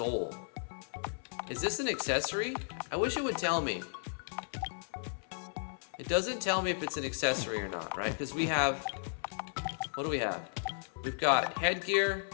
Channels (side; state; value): right; silent; 55 dB below the other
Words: Is this an accessory? I wish it would tell me. It doesn't tell me if it's an accessory or not, right? Because we have, what do we have? We've got headgear,